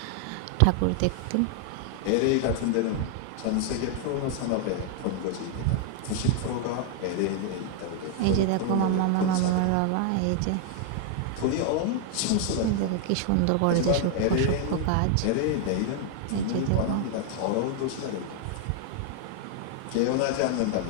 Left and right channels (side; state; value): both; different; correlation 0.00